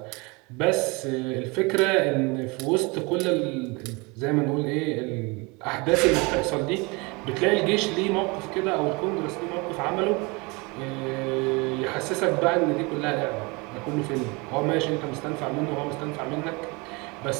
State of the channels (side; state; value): left; quieter; 27.4 dB